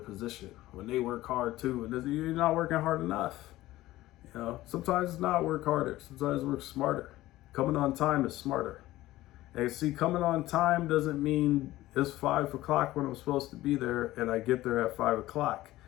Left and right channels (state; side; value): quieter; right; 16.4 dB